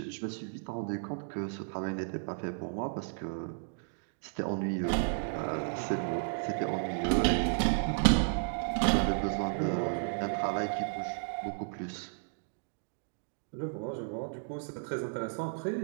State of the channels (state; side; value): silent; left; digital silence